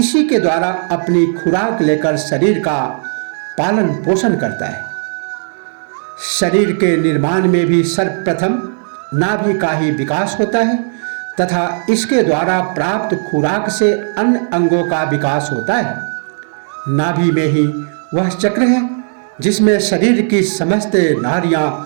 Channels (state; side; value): silent; left; 70 dB below the other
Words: के द्वारा अपनी खुराक लेकर शरीर का पालन पोषण करता है। शरीर के निर्माण में भी सर्वप्रथम नाभि का ही विकास होता है तथा इसके द्वारा प्राप्त खुराक से अन्य अंगों का विकास होता है। नाभि में ही वह चक्र है जिसमें शरीर की समस्त नाड़ियां